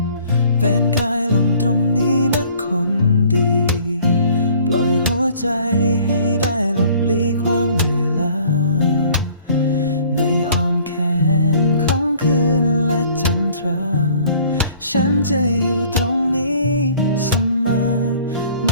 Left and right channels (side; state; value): both; inverted; correlation -0.54